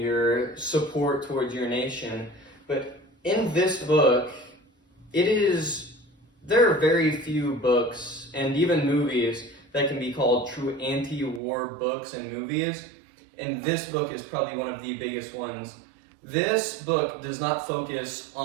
your support towards your nation. But in this book, there are very few books and even movies that can be called true anti-war books and movies, and this book is probably one of the biggest ones. This book does not focus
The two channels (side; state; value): left; drops out; at 11.4 s